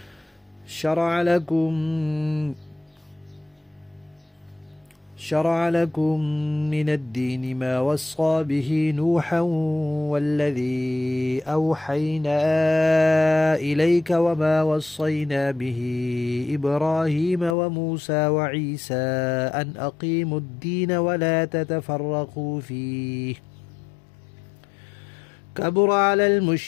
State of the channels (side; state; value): right; drops out; at 17.6 s